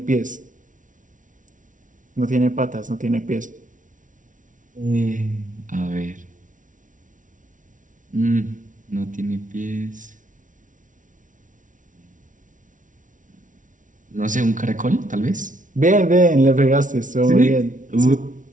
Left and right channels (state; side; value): late; left; 0.37 ms